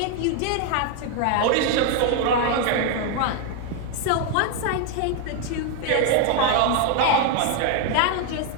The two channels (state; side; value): different; both; correlation 0.00